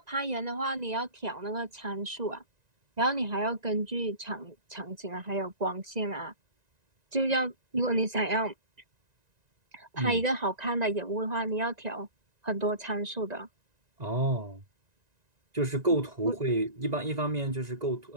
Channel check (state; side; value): late; left; 1.9 ms